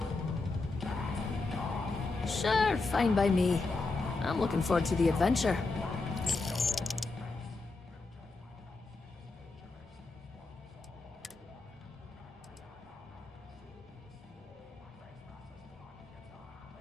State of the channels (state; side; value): quieter; right; 3.6 dB